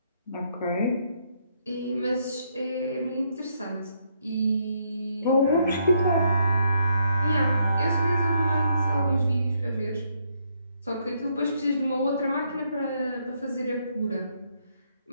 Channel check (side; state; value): both; inverted; correlation -0.73